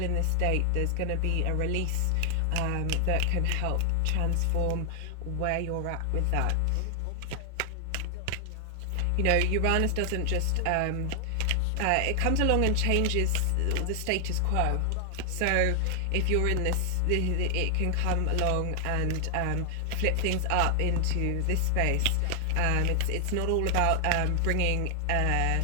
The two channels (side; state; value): both; different; correlation 0.00